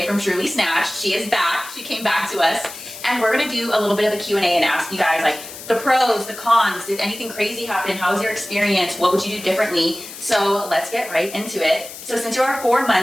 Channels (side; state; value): left; noise; hiss, 13 dB below the sound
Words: from Truly Snatched. She is back. She came back to us. And we're going to do a little bit of a Q&A and ask you guys, like, the pros, the cons. Did anything crazy happen? How was your experience? What would you do differently? So let's get right into it. So since you are 4